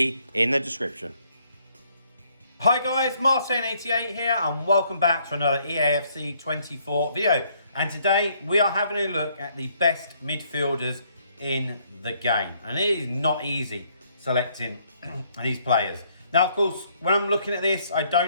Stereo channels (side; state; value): both; inverted; correlation -0.68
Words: in the description. Hi guys, Martin88 here and welcome back to another Eafc 24 video. And today we are having a look at the best midfielders in the game. And it is not easy selecting these players. Now, of course, when I'm looking at this, I